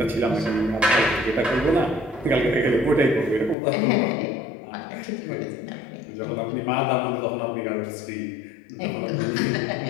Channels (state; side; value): drops out; right; at 3.6 s